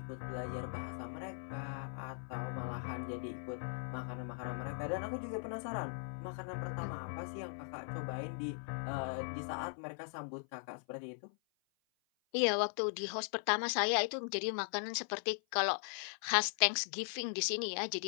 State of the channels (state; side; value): silent; right; 52 dB below the other